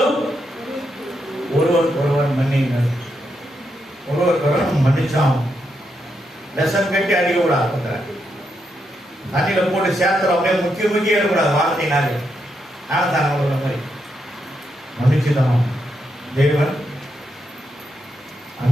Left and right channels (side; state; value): both; normal; correlation 0.82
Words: ஒருவருக்கொருவர் மன்னியுங்கள். ஒருவருக்கொருவர் மன்னிச்சாம். லெசன் கட்டி அடிக்க கூடாது. தண்ணியில போட்டு சேர்த்துற அப்படியே முக்கிய எடுக்கூடாது. வார்த்தைனாலே ஆனந்தாங்க உள்ள மாதிரி மன்னிச்சுதான். தேவன்